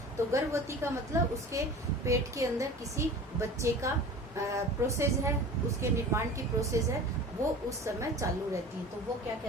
तो गर्भवती का मतलब उसके पेट के अंदर किसी बच्चे का प्रोसेस है, उसके निर्माण की प्रोसेस है, वो उस समय चालू रहती है, तो वो क्या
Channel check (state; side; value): normal; both; correlation 0.38